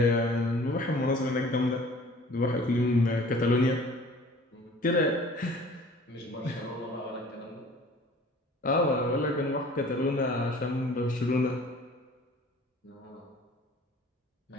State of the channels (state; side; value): normal; both; correlation 0.48